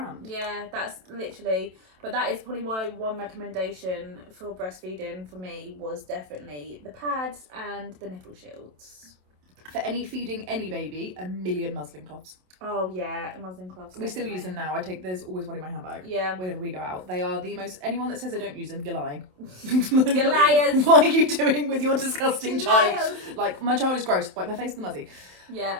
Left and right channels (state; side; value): late; left; 27 ms